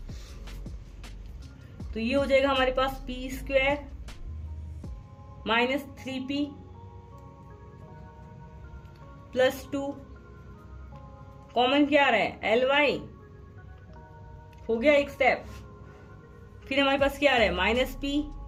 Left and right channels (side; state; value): both; identical; correlation 1.00